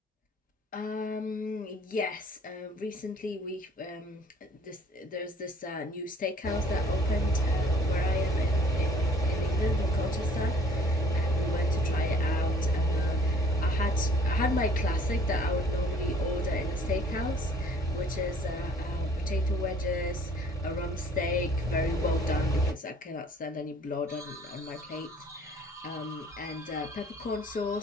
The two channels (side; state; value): both; normal; correlation 0.56